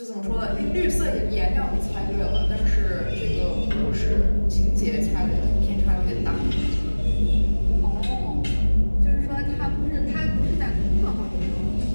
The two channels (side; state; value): both; inverted; correlation -1.00